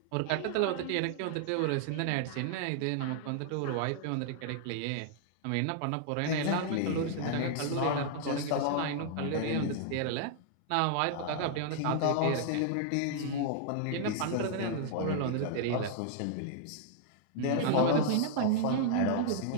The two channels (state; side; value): different; both; correlation -0.01